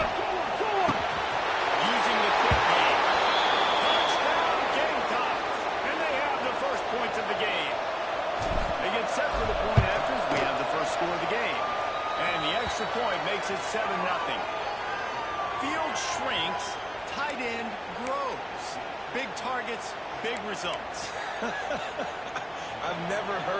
Using the quick game. Touchdown Gamecocks. And they have the first points of the game. They get set for the point afters. We have the first score of the game. And the extra point makes it 7-0. Field shrinks, tight end grows. Big targets, big results. I've never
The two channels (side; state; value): both; identical; correlation 1.00